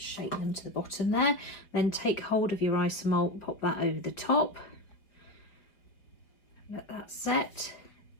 them to the bottom there. Then take hold of your isomalt, pop that over the top. Let that set.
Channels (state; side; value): late; right; 5.1 ms